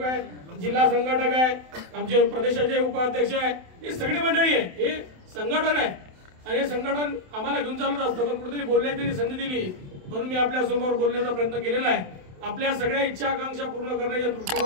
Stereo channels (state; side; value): late; left; 27 ms